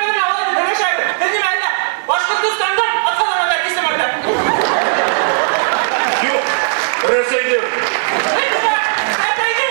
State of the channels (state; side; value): silent; left; digital silence